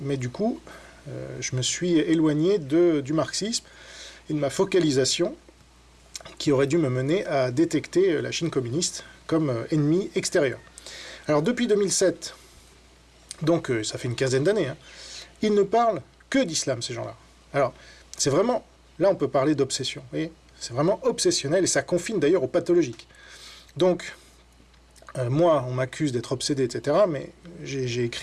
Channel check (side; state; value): both; identical; correlation 1.00